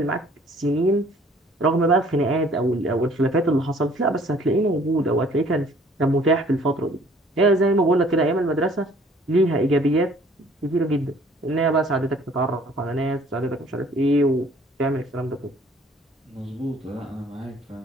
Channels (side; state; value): both; normal; correlation 0.56